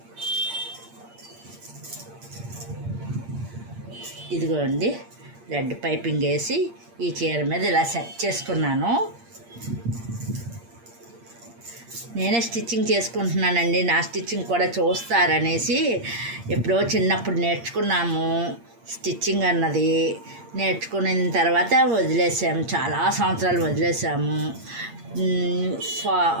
ఇదిగోండి, రెడ్ పైపింగ్ వేసి ఈ చీర మీద ఇలా సెట్ చేసుకున్నాను. నేనే స్టిచ్చింగ్ చేసుకుంటున్నానండి. నా స్టిచ్చింగ్ కూడా చూస్తారనేసి ఎప్పుడో చిన్నప్పుడు నేర్చుకున్నాము స్టిచ్చింగ్ అన్నది. నేర్చుకున్న తర్వాత వదిలేసాము, చాలా సంవత్సరాలు వదిలేసాము.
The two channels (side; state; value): left; late; 8.6 ms